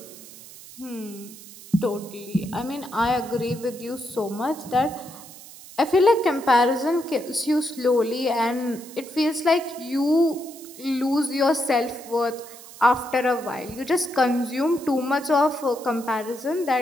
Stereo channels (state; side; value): noise; right; hiss, 17 dB below the sound